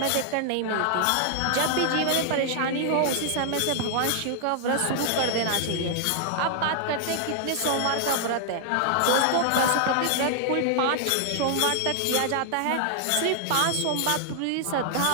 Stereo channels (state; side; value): different; both; correlation 0.00